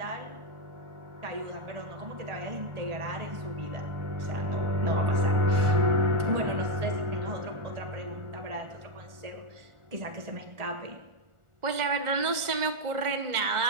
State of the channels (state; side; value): late; left; 1.4 ms